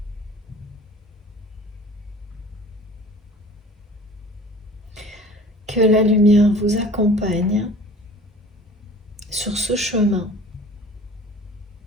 que la lumière vous accompagne sur ce chemin.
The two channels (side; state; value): both; normal; correlation 0.44